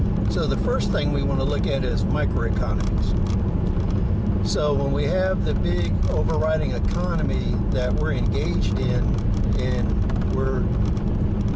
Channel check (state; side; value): identical; both; correlation 1.00